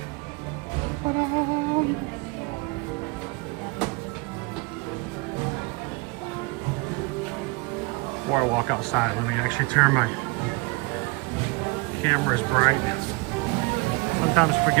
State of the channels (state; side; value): quieter; left; 27.2 dB